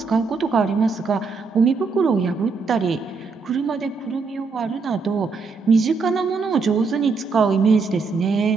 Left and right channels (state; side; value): quieter; left; 4.6 dB